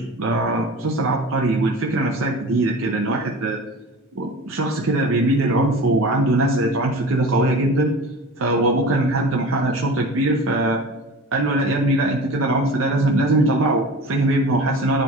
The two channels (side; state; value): both; normal; correlation 0.36